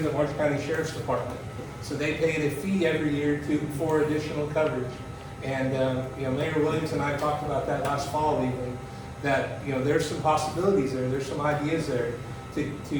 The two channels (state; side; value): identical; both; correlation 1.00